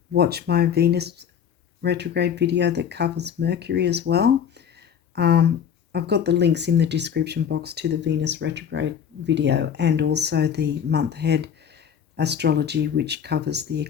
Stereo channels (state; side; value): quieter; right; 8.2 dB